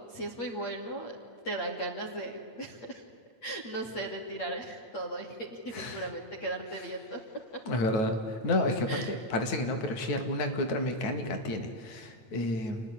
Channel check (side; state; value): right; late; 9.2 ms